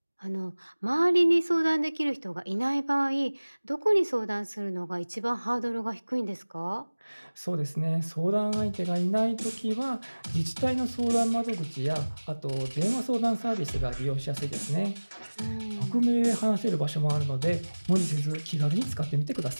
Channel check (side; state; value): both; inverted; correlation -1.00